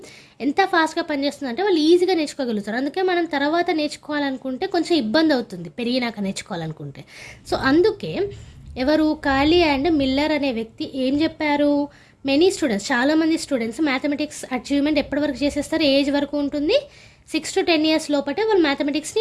ఎంత ఫాస్ట్గా పనిచేస్తుంది అంటే వాళ్ళు ఈజీగా నేర్చుకోగలుగుతారు. అందుకే మనం తర్వాత నేర్చుకోవాలనుకుంటే కొంచెం ఇబ్బంది అవుతుంది, పెరిగినాక నేర్చుకోవాలనుకుంటే. సో అందుకే ఎవరు? కాలీ అండ్ మిల్లర్ అనే వ్యక్తి ఏం చెప్పారు? మెనీ స్టూడెంట్స్, చాలామంది స్టూడెంట్స్ మ్యాథమెటిక్స్ అచీవ్మెంట్ ఎప్పటి వరకు చేసేస్తారు? ఏజ్ వరకు ఉంటుంది, 6 to 10 ఇయర్స్ లోపటే వాళ్ళు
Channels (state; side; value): identical; both; correlation 1.00